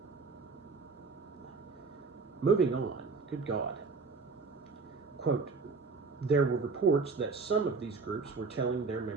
Moving on, good God. Quote, "There were reports that some of these groups were telling their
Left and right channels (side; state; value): left; quieter; 4.5 dB